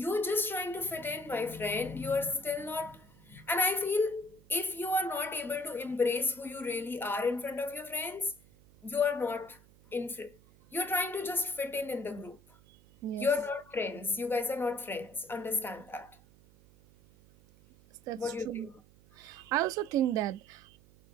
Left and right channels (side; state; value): right; noise; hum, 26 dB below the sound